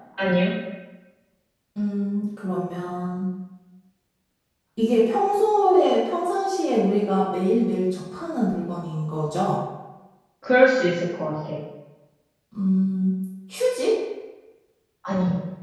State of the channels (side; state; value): both; identical; correlation 1.00